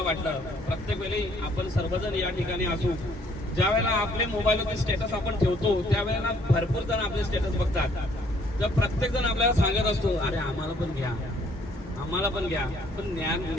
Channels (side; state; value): both; normal; correlation 0.63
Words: वाटलं. प्रत्येक वेळी आपण सर्वजण या ठिकाणी असू. ज्या वेळेला आपले मोबाईलवरती स्टेटस आपण ठेवतो त्यावेळेला भरपूर जण आपले स्टेटस बघतात. तर प्रत्येक जण आपल्याला सांगत असतो अरे आम्हाला पण घ्या, आम्हाला पण घ्या. पण